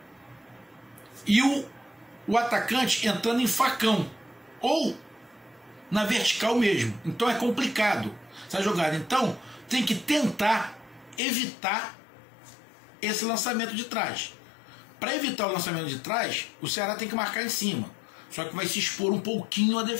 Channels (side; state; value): right; drops out; at 11.2 s